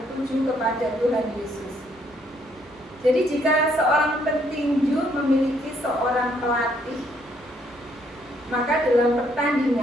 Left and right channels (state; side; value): normal; both; correlation 0.69